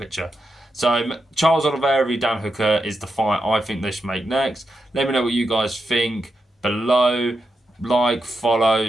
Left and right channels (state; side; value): normal; both; correlation 0.87